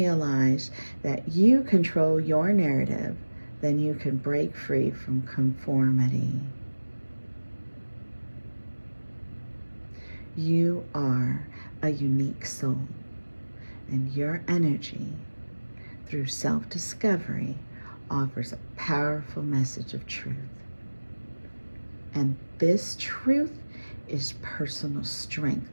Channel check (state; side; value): inverted; both; correlation -1.00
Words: that you control your narrative, then you can break free from conformity. You are a unique soul, and your energy, through self-discovery, offers a powerful message of truth. And this truth is personal strength